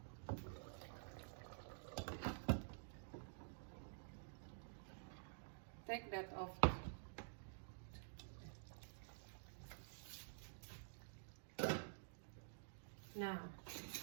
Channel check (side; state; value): left; silent; digital silence